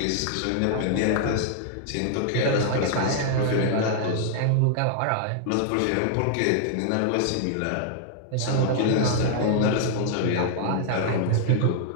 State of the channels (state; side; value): different; both; correlation -0.01